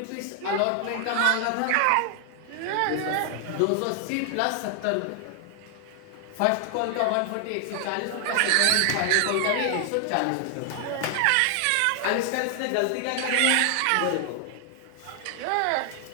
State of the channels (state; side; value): different; both; correlation 0.00